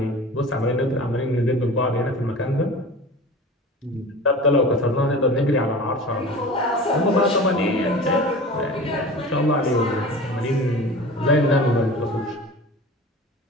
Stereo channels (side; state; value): both; normal; correlation 0.37